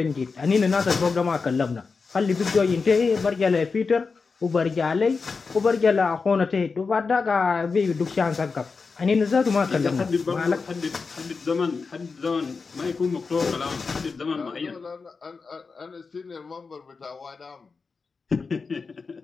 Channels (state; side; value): quieter; right; 4.7 dB